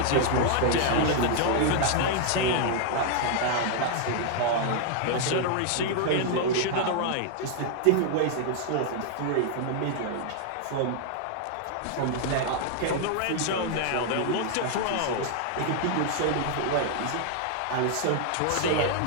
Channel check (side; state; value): both; different; correlation 0.00